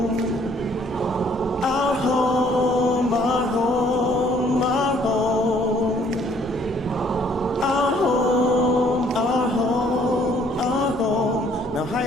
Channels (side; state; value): both; normal; correlation 0.61